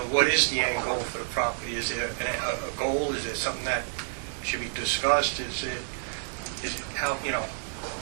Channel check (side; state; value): left; silent; digital silence